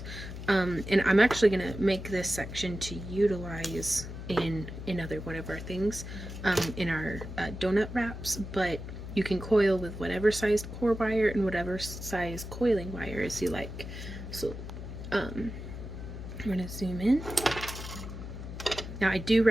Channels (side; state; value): left; noise; hum, 9 dB below the sound